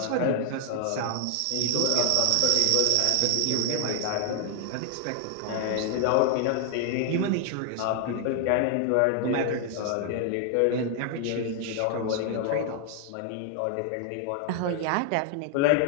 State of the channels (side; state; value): both; different; correlation 0.00